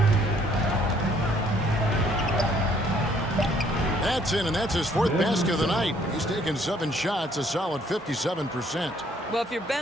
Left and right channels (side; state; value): both; normal; correlation 0.63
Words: That's in, and that's his 4th basket of the night. He's taken 7 shots, a solid 57%. Well, if you're